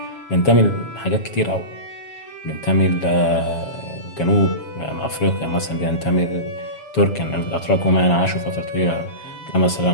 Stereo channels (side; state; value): right; late; 7.2 ms